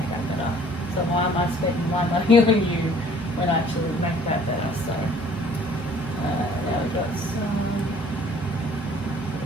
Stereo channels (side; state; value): both; normal; correlation 0.54